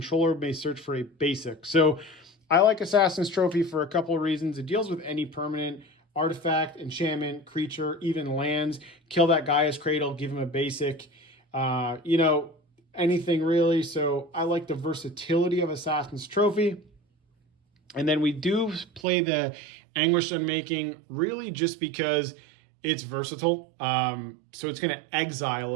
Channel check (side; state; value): left; drops out; at 19.0 s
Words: may search for a basic. So I like Assassin's Trophy for a couple of reasons. It deals with any permanent, artifact, enchantment, creature, even lands. Kill that Gaia's Cradle, give him a basic, anything really. So I like the versatility of Assassin's Trophy. And then we do play the Anguished Unmaking really just because it's versatile. So it's going to exile